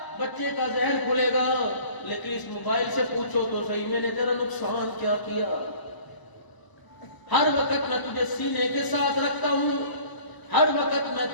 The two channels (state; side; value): late; right; 1.0 ms